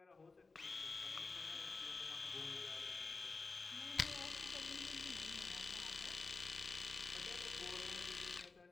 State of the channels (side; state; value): right; quieter; 4.0 dB